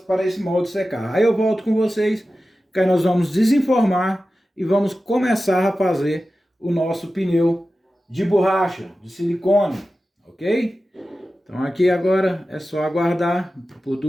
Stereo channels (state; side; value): normal; both; correlation 0.94